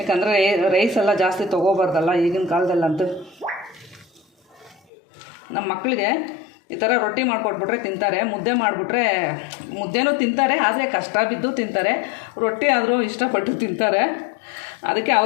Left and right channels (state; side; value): drops out; right; at 4.8 s